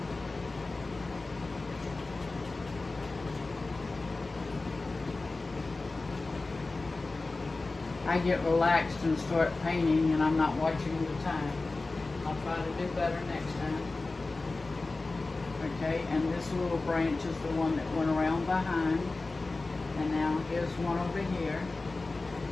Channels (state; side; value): quieter; right; 3.4 dB